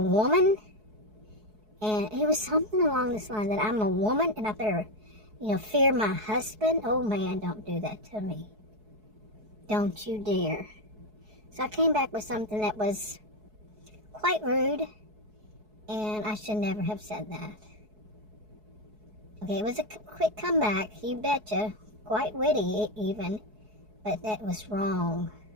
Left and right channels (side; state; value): left; late; 4.7 ms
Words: woman. And it was something along this line, that I'm a woman and I better, fear my husband. Oh man, don't do that to me. Don't you dare. So I came back with something that was quite rude, and I should never have said that. Okay, it was a quick comeback, you betcha. Quite witty even, but that was wrong.